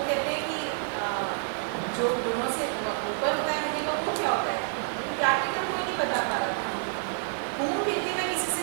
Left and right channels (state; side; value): silent; left; 59 dB below the other